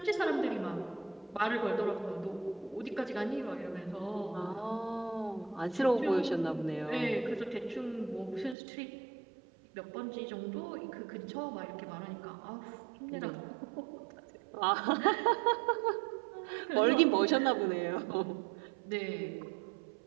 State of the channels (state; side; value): drops out; left; at 8.6 s